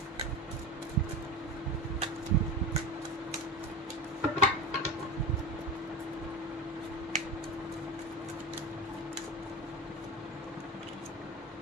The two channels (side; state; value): both; normal; correlation 0.25